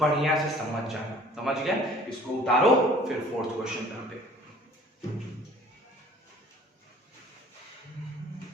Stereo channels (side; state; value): both; normal; correlation 0.52